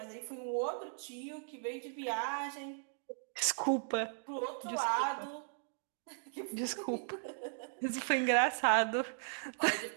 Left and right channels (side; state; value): left; silent; digital silence